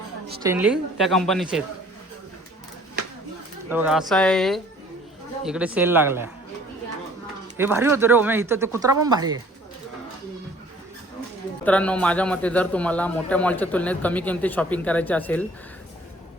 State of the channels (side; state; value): both; normal; correlation 0.53